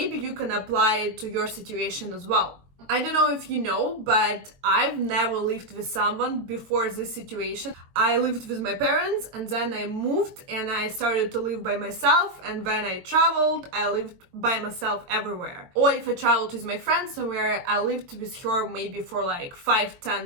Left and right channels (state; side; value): late; left; 22 ms